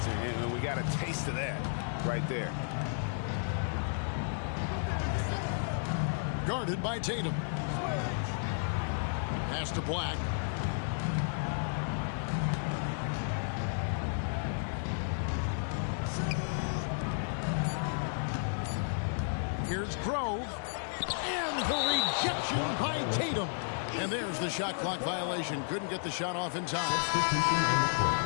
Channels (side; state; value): right; silent; digital silence